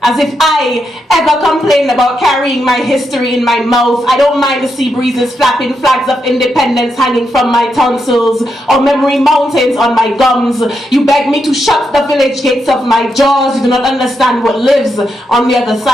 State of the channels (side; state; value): both; normal; correlation 0.83